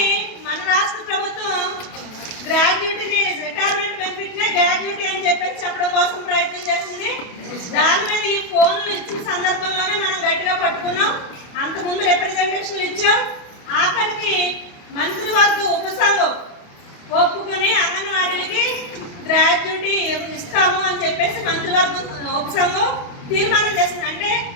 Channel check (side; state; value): right; late; 28 ms